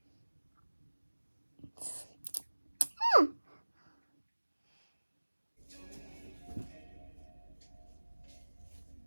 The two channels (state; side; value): inverted; both; correlation -1.00